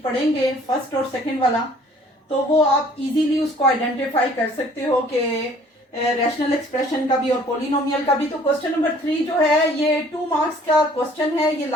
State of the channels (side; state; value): both; normal; correlation 0.55